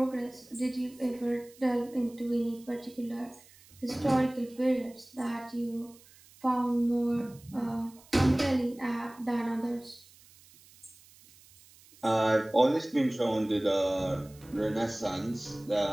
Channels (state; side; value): noise; right; hiss, 25 dB below the sound